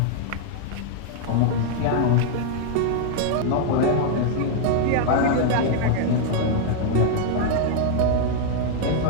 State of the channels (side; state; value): both; different; correlation 0.00